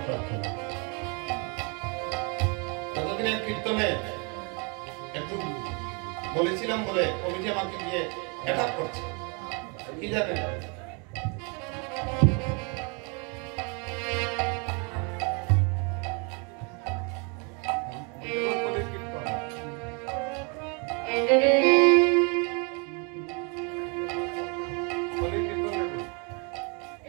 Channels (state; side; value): quieter; left; 33.9 dB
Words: ততদিনের কীর্তনে একটু বলেছিলাম বলে কমিটি আমাকে গিয়ে অ্যাটাক করছে, কি জানেন?